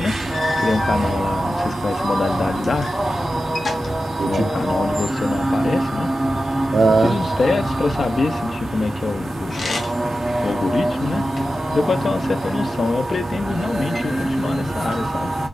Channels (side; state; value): both; normal; correlation 0.93